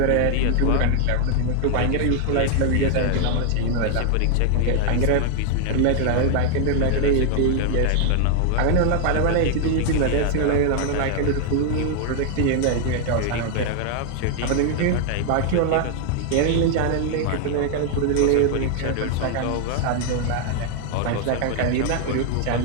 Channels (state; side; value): different; both; correlation 0.00